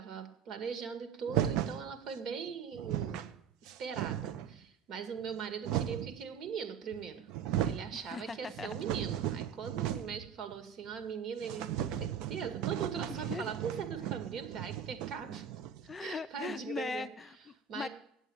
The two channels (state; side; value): quieter; left; 7.1 dB